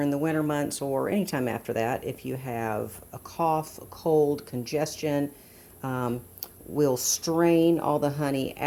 the winter months or anytime after that, if you have a cough, a cold, congestion, we'll strain all the honey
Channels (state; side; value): identical; both; correlation 1.00